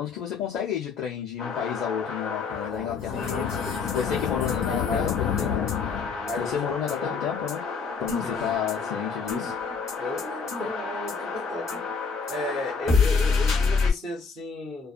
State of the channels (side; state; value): right; quieter; 5.2 dB